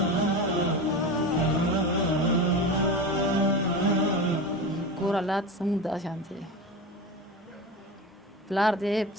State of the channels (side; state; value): both; normal; correlation 0.26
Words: کور حالات زموږ دا شانتې دی. پلار دی